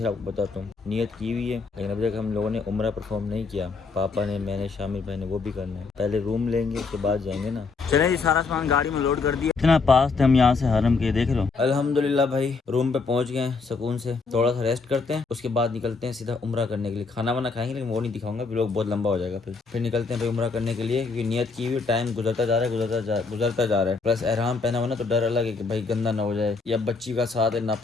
आपको बताता हूँ। नियत की हुई है, लेकिन अभी तक हम लोगों ने उम्रा परफॉर्म नहीं किया। पापा ने, मैंने, शामिर भाई ने, वो भी करना है। पहले रूम लेंगे उसके बाद जाएंगे ना। चले जी, सारा सामान गाड़ी में लोड कर दिया। इतना पास थे हम यहाँ से हरम के, देख लो। अल्हम्दुलिल्लाह भाई रूम पे पहुंच गए सुकून से। थोड़ा सा रेस्ट करते हैं, उसके बाद निकलते हैं सीधा उम्रा करने के लिए। खाना वाना खाएंगे लेकिन वो नहीं दिखाऊंगा, व्लॉग बहुत लंबा हो जाएगा। फिर निकलते हैं भाई उम्रा करने के लिए, क्योंकि नियत की हुई। टाइम गुजरता जा रहा है, गुजरता जा रहा है। प्लस एहराम पहना हुआ ना तो डर अलग है कि भाई गंदा ना हो जाए या बच्ची का साथ है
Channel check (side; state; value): right; quieter; 4.4 dB